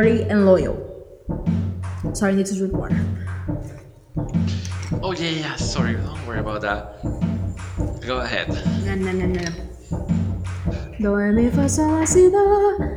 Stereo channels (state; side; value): identical; both; correlation 1.00